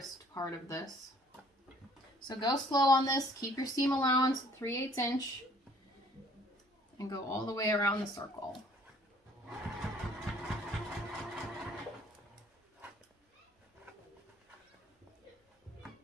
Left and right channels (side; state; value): both; normal; correlation 0.58